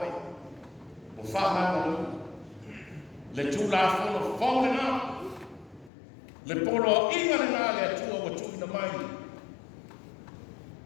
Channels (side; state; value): right; drops out; at 5.9 s